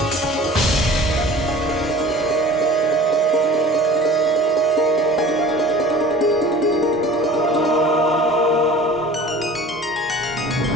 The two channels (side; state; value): both; normal; correlation 0.44